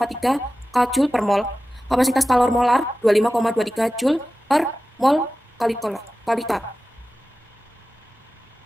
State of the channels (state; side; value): normal; both; correlation 0.95